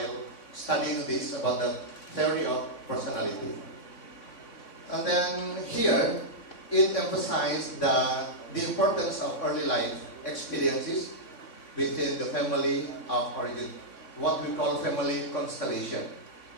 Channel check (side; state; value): right; late; 3.6 ms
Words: studying this about the theory of personality. And then here, it emphasized the importance of early life experiences within the family of origin, what we call family constellation.